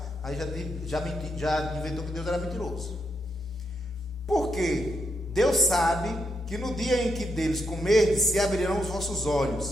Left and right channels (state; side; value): normal; both; correlation 0.80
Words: aí já inventou que Deus era mentiroso. Porque Deus sabe que no dia em que deles comerdes, se abrirão os vossos